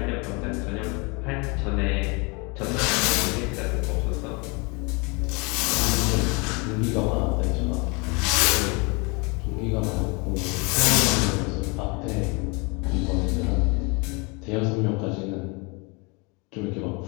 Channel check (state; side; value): quieter; right; 29.7 dB